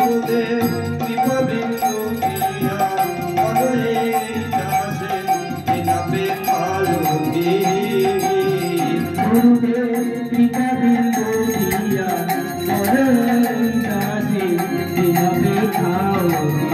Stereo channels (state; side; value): identical; both; correlation 1.00